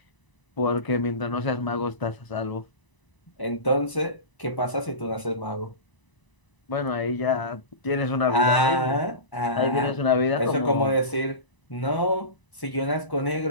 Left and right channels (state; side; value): late; right; 1.0 ms